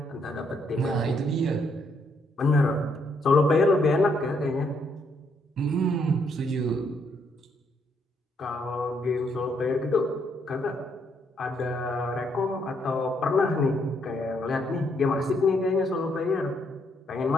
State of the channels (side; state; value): both; normal; correlation 0.73